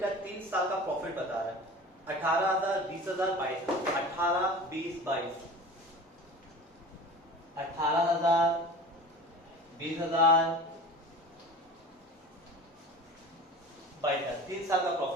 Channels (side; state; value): both; normal; correlation 0.37